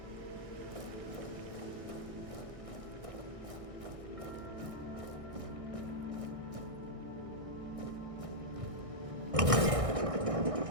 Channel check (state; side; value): late; left; 1.6 ms